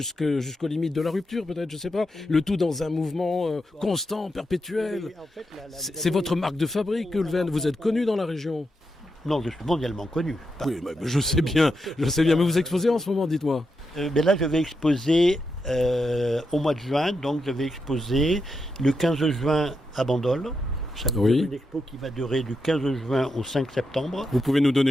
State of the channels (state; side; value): normal; both; correlation 0.85